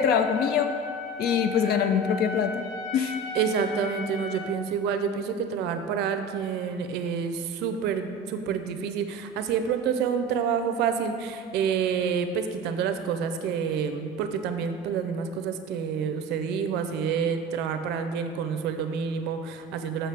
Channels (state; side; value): normal; both; correlation 0.33